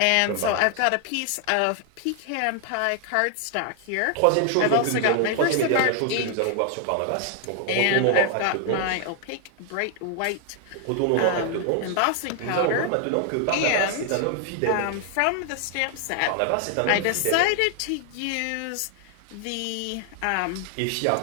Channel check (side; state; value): both; different; correlation 0.00